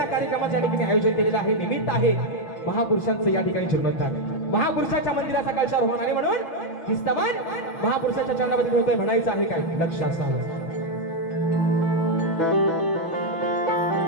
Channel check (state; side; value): late; right; 6.1 ms